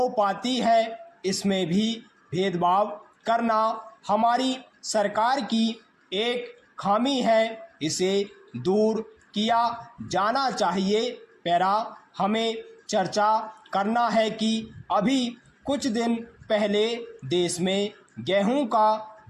पाती है। इसमें भी भेदभाव करना हमारी सरकार की एक खामी है। इसे दूर किया जाना चाहिए। पैरा हमें चर्चा करना है कि अभी कुछ दिन पहले देश में गेहूं का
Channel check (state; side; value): identical; both; correlation 1.00